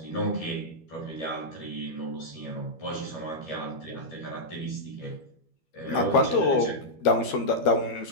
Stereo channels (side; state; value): right; late; 13 ms